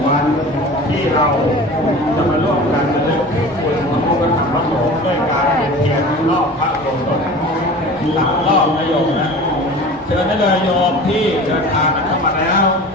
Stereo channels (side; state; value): both; normal; correlation 0.38